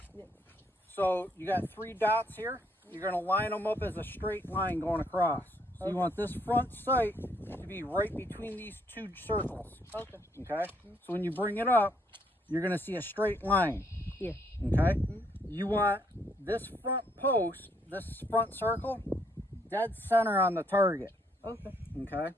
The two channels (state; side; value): normal; both; correlation 0.70